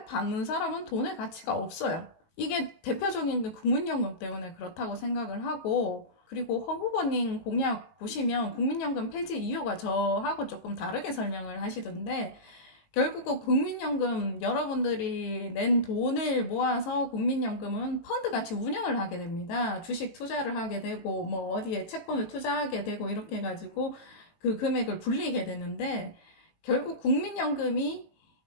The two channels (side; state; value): right; late; 18 ms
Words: 받는 사람은 돈의 가치가 없어요. 이게 대표적인 게 국민연금 때문에 그렇다고 생각을 하고, 그리고 허 후보님 공약 보시면 국민연금 폐지 이유가 저하고 조금 다르게 설명을 하시던데, 결국은 국민연금 여러분들이 낸 돈을 모아서 국민연금은 펀드같이 운영을 하게 됩니다. 주식 투자를 하게 되고 뭐 어디에 채권을 투자하게 되고 이렇게 해가지고 그 금액을 불리게 되는데, 결국 국민연금이